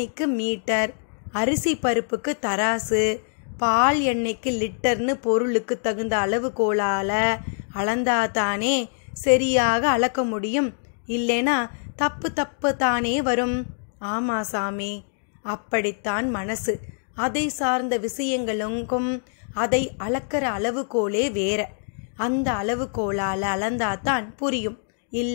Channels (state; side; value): silent; right; digital silence